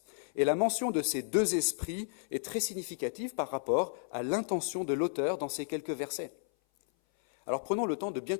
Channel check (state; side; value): silent; right; 56 dB below the other